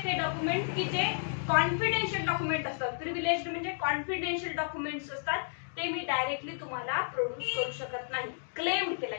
डॉक्युमेंट की जे कॉन्फिडेन्शियल डॉक्युमेंट असतात, प्रिव्हिलेज्ड म्हणजे कॉन्फिडेन्शियल डॉक्युमेंट्स असतात, ते मी डायरेक्टली तुम्हाला प्रोड्यूस करू शकत नाही. क्लेम केला,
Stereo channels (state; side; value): silent; right; digital silence